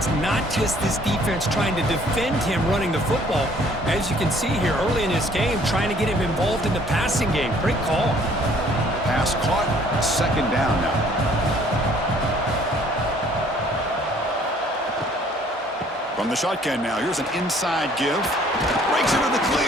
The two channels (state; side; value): normal; both; correlation 0.59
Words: not just this defense trying to defend him running the football. As you can see here early in this game, trying to get him involved in the passing game. Great call. Pass caught. 2nd down now. From the shotgun now, here's an inside give. Breaks into the